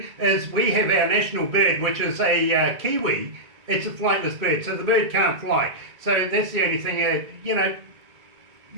is we have our national bird, which is a kiwi, It's a flightless bird, so the bird can't fly. So that's the only thing,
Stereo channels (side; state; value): left; late; 1.9 ms